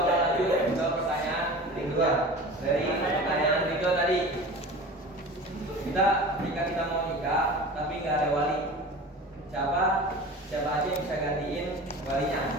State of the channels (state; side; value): normal; both; correlation 0.36